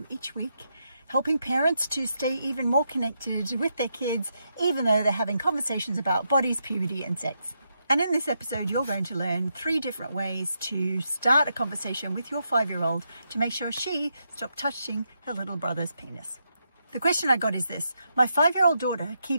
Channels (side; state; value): both; inverted; correlation -0.82